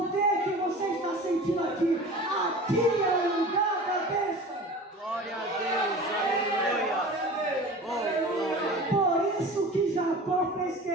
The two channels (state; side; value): normal; both; correlation 0.38